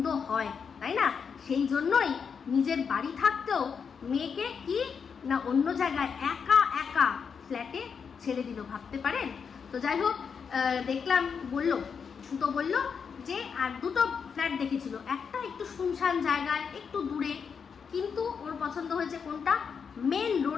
হয়, তাই না? সেই জন্যই নিজের বাড়ি থাকতেও মেয়েকে কি না অন্য জায়গায় একা একা ফ্ল্যাটে ছেড়ে দিল, ভাবতে পারেন? তো যাই হোক, দেখলাম সুতো বলল যে আর দুটো ফ্ল্যাট দেখেছিল, একটা একটু শুনশান জায়গায় একটু দূরে, কিন্তু ওর পছন্দ হয়েছে কোনটা, মেন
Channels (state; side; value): quieter; right; 6.3 dB